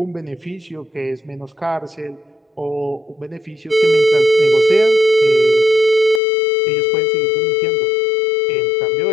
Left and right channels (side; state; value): right; drops out; at 6.2 s